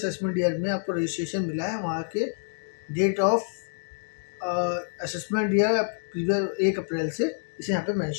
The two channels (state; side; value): silent; right; digital silence